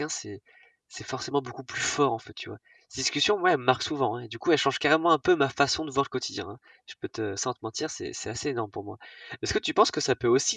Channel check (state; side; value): identical; both; correlation 1.00